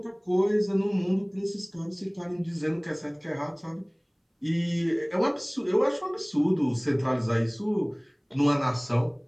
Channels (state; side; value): identical; both; correlation 1.00